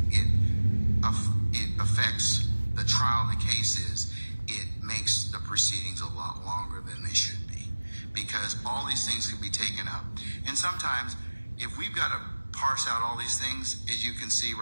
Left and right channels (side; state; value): both; inverted; correlation -1.00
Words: affects the trial of the case is it makes the proceedings a lot longer than they should be, because all these things can be taken up. And sometimes if we've got to parse out all these things, as you can see